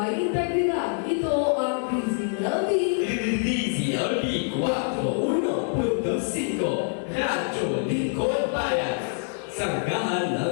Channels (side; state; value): right; silent; 61 dB below the other